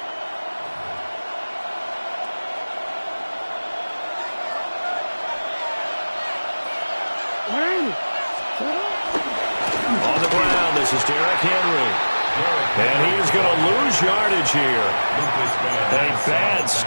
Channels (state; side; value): inverted; both; correlation -1.00